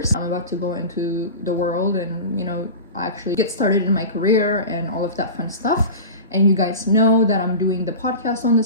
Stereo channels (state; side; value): inverted; both; correlation -0.31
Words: I'm about to go into the world and, you know, actually get started in my career and all of that fun stuff. And you guys know that I'm doing the podcast on the